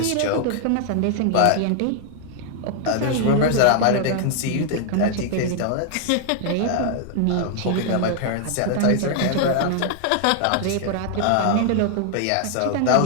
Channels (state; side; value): different; both; correlation 0.00